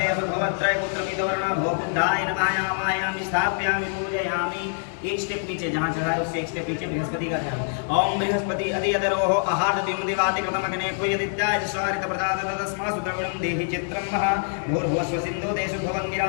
भवत्रय पुत्रमिदवर्णा भो बुद्धाय नमः आवाहयामि स्थापयामि पूजयामि। एक स्टेप नीचे जहाँ चढ़ाए उससे एक स्टेप नीचे बृहस्पति का ध्यान। ओम बृहस्पति अधियदरोह आहार द्विमुदिवाति कृतमग्ने कुयदित्याय स्वारित प्रदात तस्मासु द्रविणं देहि चित्रं मह भूर्भुवस्व सिन्धु देशु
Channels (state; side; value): silent; right; 62 dB below the other